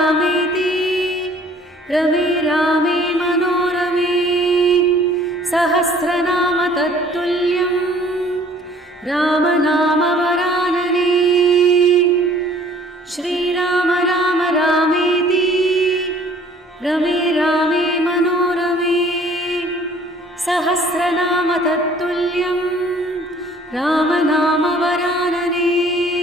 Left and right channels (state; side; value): normal; both; correlation 0.55